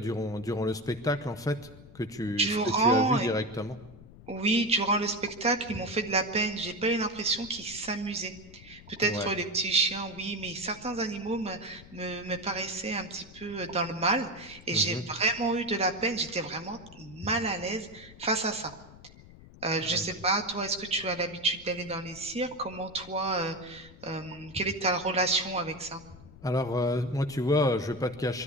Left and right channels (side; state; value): left; noise; rumble, 20 dB below the sound